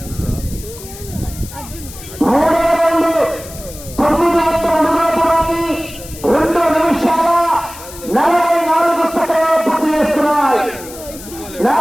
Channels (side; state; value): left; noise; hiss, 15 dB below the sound